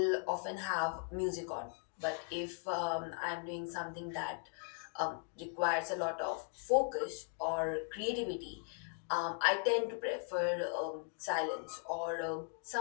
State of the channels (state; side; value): silent; right; 52 dB below the other